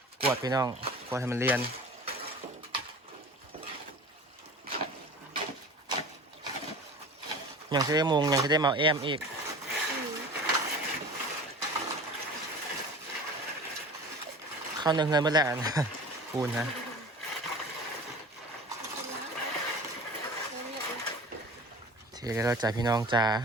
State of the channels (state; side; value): normal; both; correlation 0.38